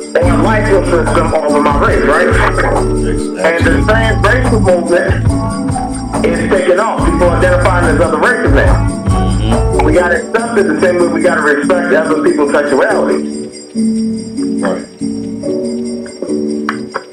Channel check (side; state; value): both; identical; correlation 1.00